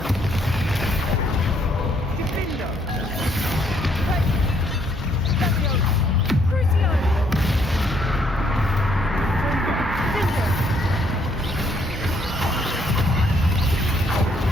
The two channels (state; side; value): normal; both; correlation 0.69